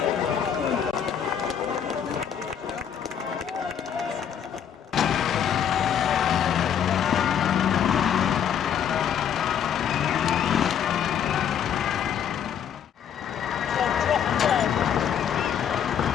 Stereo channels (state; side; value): quieter; right; 8.6 dB